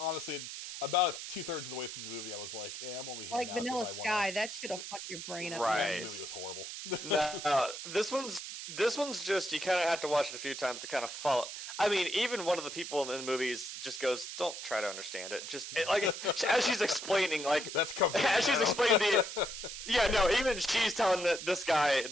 about 2/3 of the way through the movie, I was like, I'm only here like now Vanilla Sky. That shit'll fuck your brain up. Right. The movie was horrible. No, this one's just, you kind of have to watch it a few times to kind of follow. I mean, even one of the people in the movies just goes, "Don't try to understand it." Just like as she's explaining, like that's coming. As she's explaining even she's telling this guy.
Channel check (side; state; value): right; noise; hiss, 8 dB below the sound